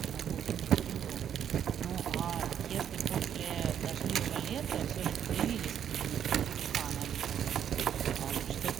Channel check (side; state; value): left; quieter; 9.2 dB